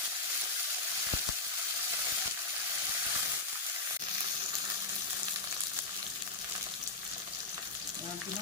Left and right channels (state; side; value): quieter; right; 3.5 dB